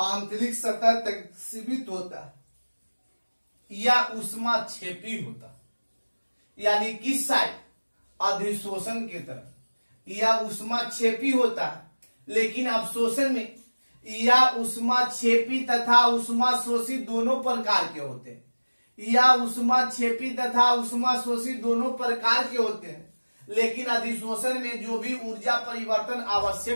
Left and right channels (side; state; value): both; inverted; correlation -1.00